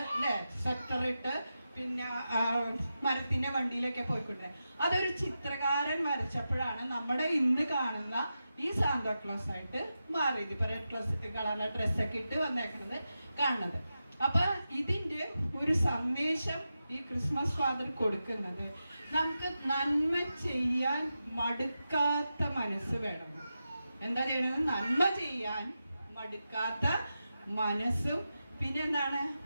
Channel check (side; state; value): both; inverted; correlation -0.90